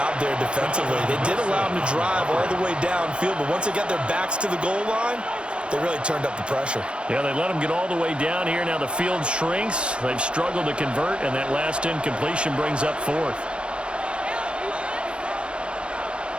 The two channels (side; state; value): left; late; 0.056 ms